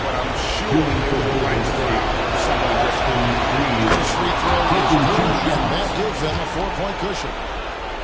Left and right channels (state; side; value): identical; both; correlation 1.00